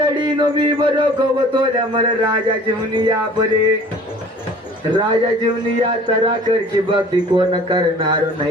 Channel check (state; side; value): normal; both; correlation 0.48